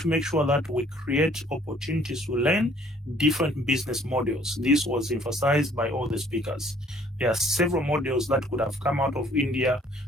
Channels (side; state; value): both; normal; correlation 0.59